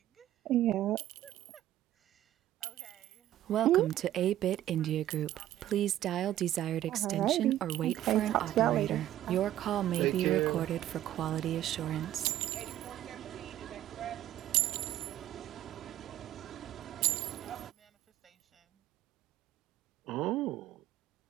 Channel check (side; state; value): left; quieter; 13.1 dB